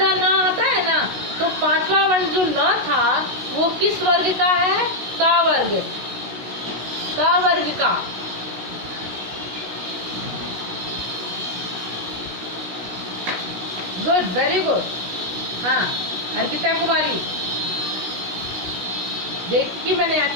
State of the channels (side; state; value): left; late; 16 ms